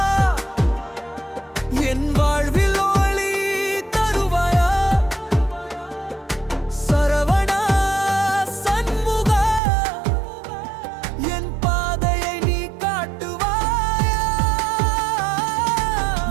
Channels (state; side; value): drops out; left; at 9.6 s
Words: என் வாழ்வில் ஒளி தருவாயா, சரவணா சண்முகா, என் பாதையை நீ காட்டுவாயா.